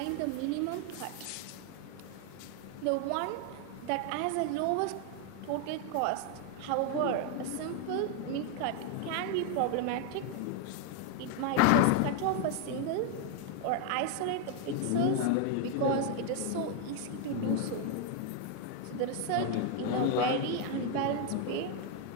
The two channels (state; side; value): different; both; correlation 0.01